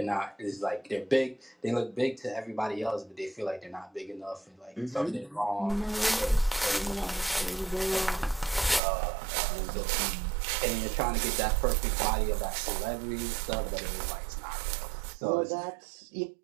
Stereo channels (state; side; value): drops out; left; at 8.8 s